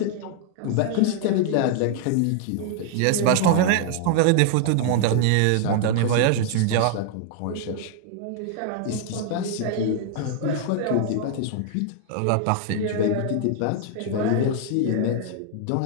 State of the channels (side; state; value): both; different; correlation 0.00